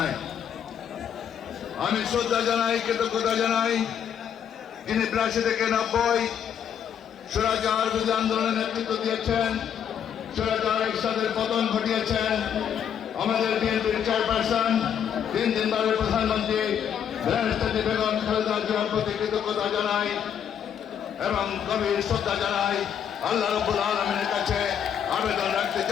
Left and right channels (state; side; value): quieter; right; 8.6 dB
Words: আমি শ্রদ্ধা জানাই, কৃতজ্ঞতা জানাই যিনি 82 থেকে 90 স্বৈরাচার বিরোধী আন্দোলনের নেতৃত্ব দিয়েছেন, স্বৈরাচার এরশাদের পতন ঘটিয়েছেন। আমাদের বিএনপির চেয়ারপারসন, 3 বারের প্রধানমন্ত্রী দেশনেত্রী বেগম খালেদা জিয়ার প্রতি কৃতজ্ঞতা জানাই এবং গভীর শ্রদ্ধা জানাই। আল্লাহ রাব্বুল আলামিনের কাছে আবেদন রাখতে